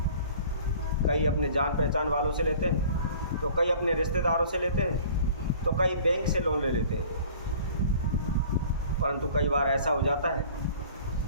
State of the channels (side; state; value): both; inverted; correlation -0.48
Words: कई अपने जान पहचान वालों से लेते हैं, तो कई अपने रिश्तेदारों से लेते हैं, तो कई बैंक से लोन ले लेते हैं। परंतु कई बार ऐसा हो जाता है